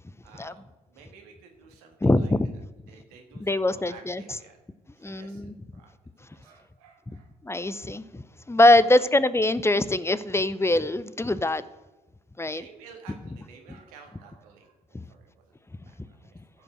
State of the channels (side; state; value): both; normal; correlation 0.75